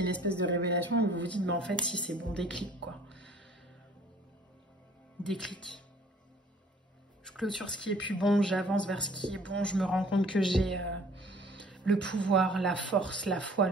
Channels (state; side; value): normal; both; correlation 0.54